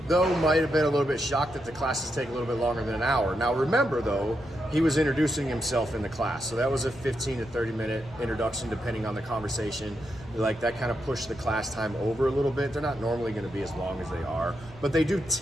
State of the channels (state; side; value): noise; left; rumble, 21 dB below the sound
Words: though, might have been a little bit shocked that the classes take a little bit longer than an hour. Now remember, though, he was introducing himself in the class. So that was a 15 to 30 minute introduction, depending on the conversation. Like, that kind of pushed the class time over a little bit. They're not normally gonna be as long as they are, but they do